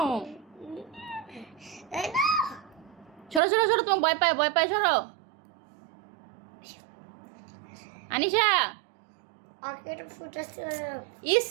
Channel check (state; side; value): drops out; left; at 3.4 s